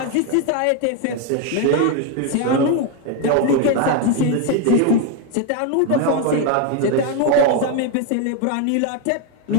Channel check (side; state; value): both; different; correlation 0.01